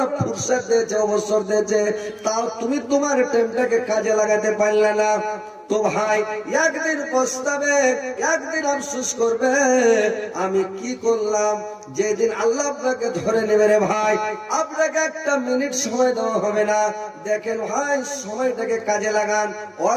ফুরসত দিয়েছে, অবসর দিয়েছে, তাও তুমি তোমার টাইমটাকে কাজে লাগাতে পারলে না। তো ভাই একদিন পস্তাবে, একদিন আফসোস করবে, আমি কি করলাম। যেদিন আল্লাহ আপনাকে ধরে নেবে রে ভাই, আপনাকে একটা মিনিট সময় দেওয়া হবে না। দেখেন ভাই, সময়টাকে কাজে লাগান,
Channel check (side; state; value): both; identical; correlation 1.00